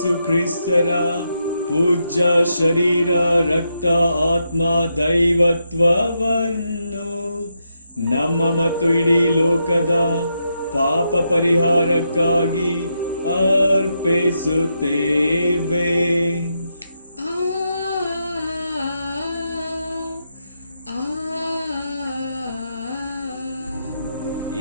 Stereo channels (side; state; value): both; inverted; correlation -0.83